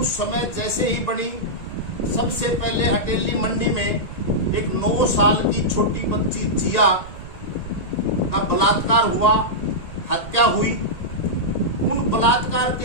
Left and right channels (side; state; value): right; late; 1.8 ms